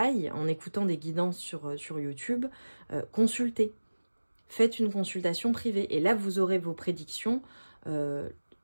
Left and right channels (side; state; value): both; inverted; correlation -1.00